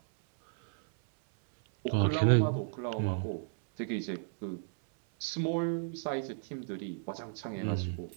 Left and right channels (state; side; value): silent; left; 56 dB below the other